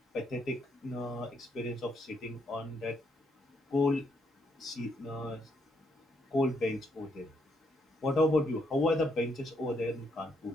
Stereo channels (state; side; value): normal; both; correlation 0.75